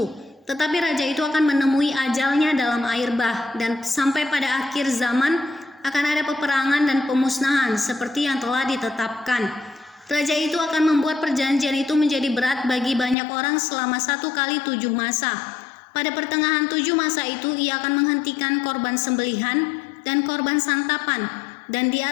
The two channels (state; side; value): drops out; right; at 13.2 s